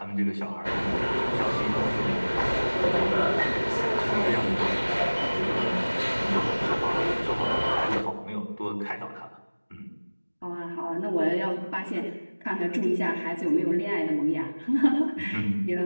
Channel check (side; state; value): both; inverted; correlation -1.00